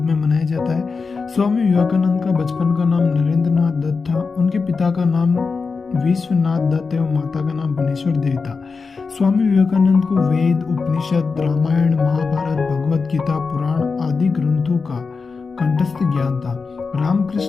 में मनाया जाता है। स्वामी विवेकानंद का बचपन का नाम नरेंद्रनाथ दत्त था। उनके पिता का नाम विश्वनाथ दत्त एवं माता का नाम भुवनेश्वर देवी था। स्वामी विवेकानंद को वेद, उपनिषद, रामायण, महाभारत, भगवत गीता, पुराण आदि ग्रंथों का कंठस्थ ज्ञान था।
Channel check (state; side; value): quieter; right; 4.7 dB